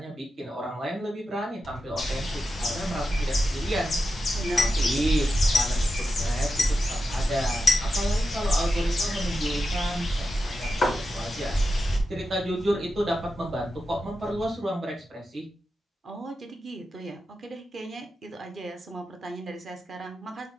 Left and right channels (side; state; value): both; normal; correlation 0.89